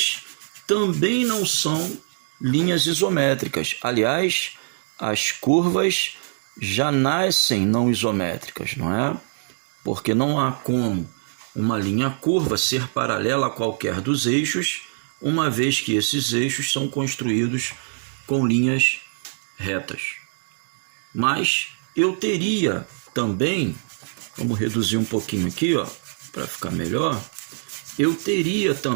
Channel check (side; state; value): left; silent; digital silence